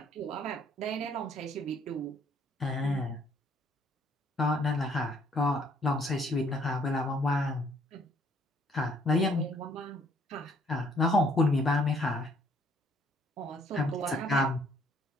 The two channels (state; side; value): normal; both; correlation 0.64